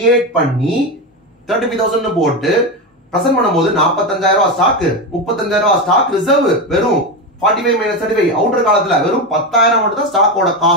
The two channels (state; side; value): normal; both; correlation 0.15